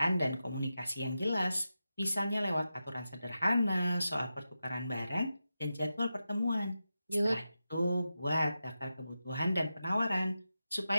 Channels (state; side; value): inverted; both; correlation -0.91